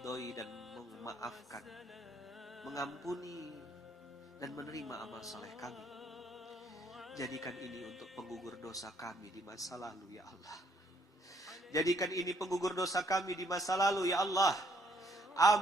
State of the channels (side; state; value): both; normal; correlation 0.68